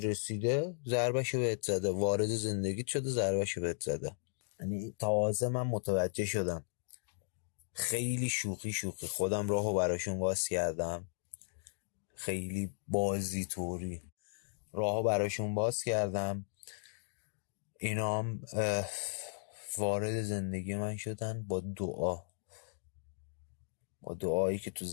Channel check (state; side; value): silent; right; digital silence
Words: ضربشو بهت زده، وارد زندگیت شده ضربشو بهت زده. یعنی تازه من متوجه شدم، خیلی شوخی خودم راهو براشون باز کردم، خیلی بازی طوری راهو براشون باز کردم، اینام وارد زندگی من شدن با دعایی که تو